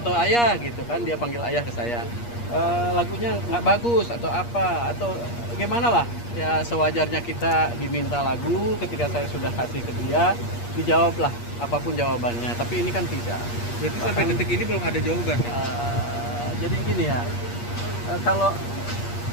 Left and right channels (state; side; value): late; right; 8.5 ms